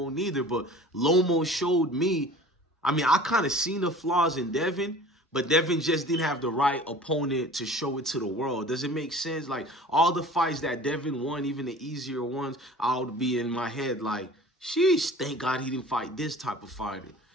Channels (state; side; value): normal; both; correlation 0.44